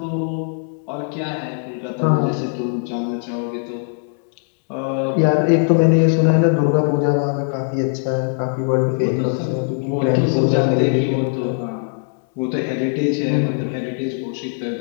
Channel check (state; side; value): silent; right; 60 dB below the other